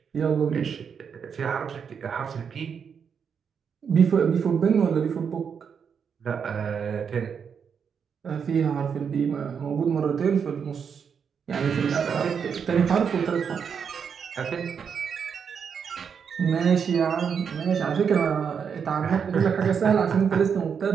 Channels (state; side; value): quieter; left; 6.8 dB